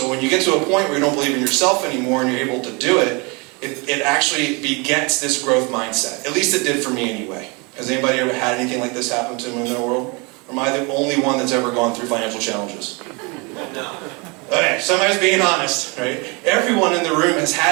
when you get to a point where you don't believe in yourself anymore and you're able to do it, it actually begets this growth mindset. At least it did for me anyway. Has anybody ever had anything like this happen to them in their world? Or am I the only one that's ever gone through financial challenges? No. Okay, somebody's being honest, right? Everyone in the room has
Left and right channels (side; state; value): left; quieter; 29.7 dB